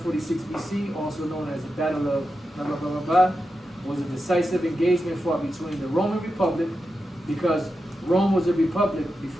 BC, also known as the Battle of blah, blah, blah, blah, blah, was a decisive engagement fought between the Roman Republic, because Rome was a republic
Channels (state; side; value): normal; both; correlation 0.89